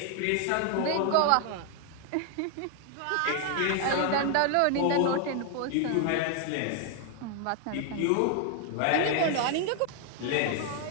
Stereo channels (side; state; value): both; different; correlation 0.00